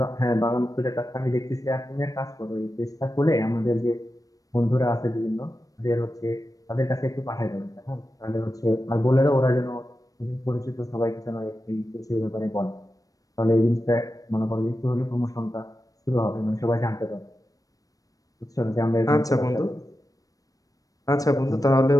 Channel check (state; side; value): late; right; 0.17 ms